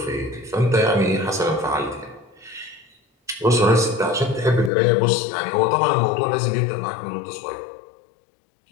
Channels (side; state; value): right; drops out; at 4.7 s